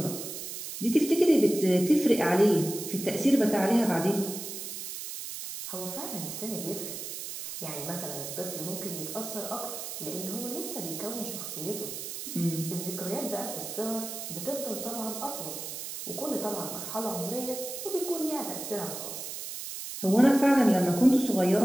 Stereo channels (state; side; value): noise; right; hiss, 7 dB below the sound